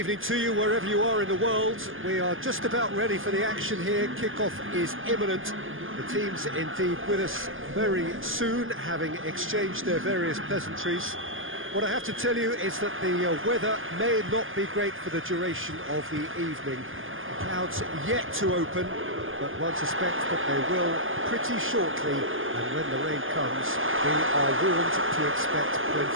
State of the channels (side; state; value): left; late; 0.59 ms